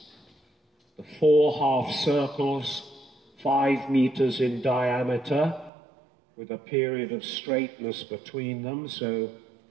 The 4 half circles, 5 meters in diameter with a period of straightness between them. So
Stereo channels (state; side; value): drops out; left; at 5.7 s